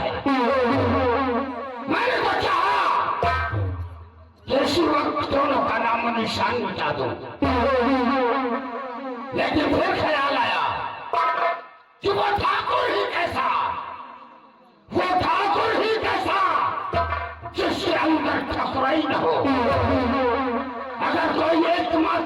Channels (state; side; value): identical; both; correlation 1.00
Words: मैंने तो चाहा कि इसी वक्त दोनों का नामो निशान मिटा दूं, लेकिन फिर ख्याल आया कि वो ठाकुर ही कैसा, वो ठाकुर ही कैसा जिसके अंदर ठकुराई न हो। अगर कोई एक